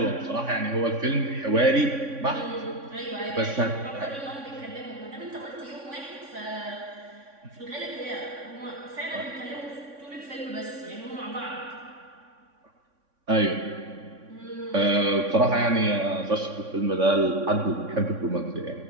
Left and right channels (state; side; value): late; left; 3.6 ms